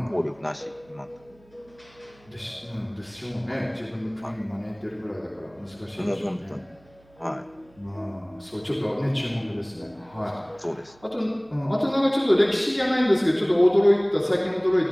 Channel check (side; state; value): right; noise; hum, 29 dB below the sound